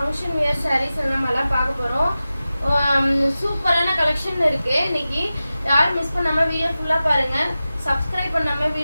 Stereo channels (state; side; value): inverted; both; correlation -0.94